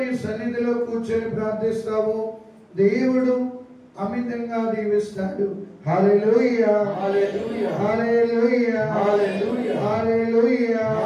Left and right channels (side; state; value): both; identical; correlation 1.00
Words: సన్నిధిలో కూర్చొని ప్రార్థిస్తావో, దేవుడు అమితంగా దీవిస్తాడు. హల్లెలూయా హల్లెలూయా హల్లెలూయా హల్లెలూయా హల్లెలూయా